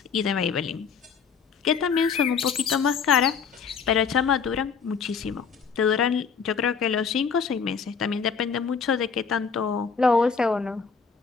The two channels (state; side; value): quieter; right; 6.0 dB